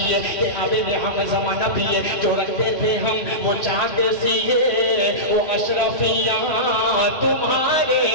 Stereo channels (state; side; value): late; right; 3.0 ms